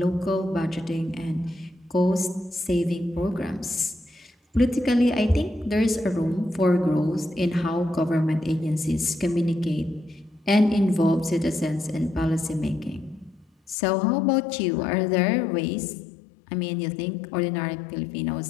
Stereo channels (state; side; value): drops out; right; at 13.8 s